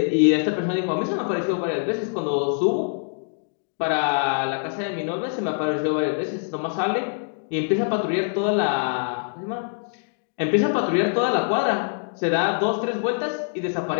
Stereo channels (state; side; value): silent; right; digital silence